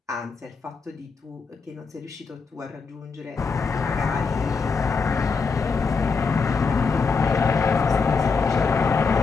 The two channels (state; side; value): quieter; right; 4.9 dB